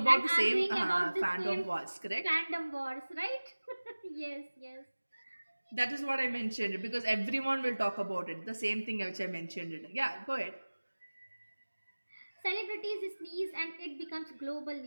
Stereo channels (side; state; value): both; inverted; correlation -1.00